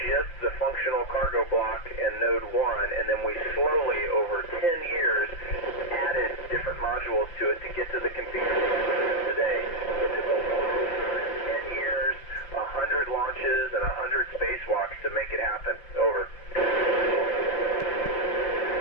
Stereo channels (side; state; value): right; late; 5.8 ms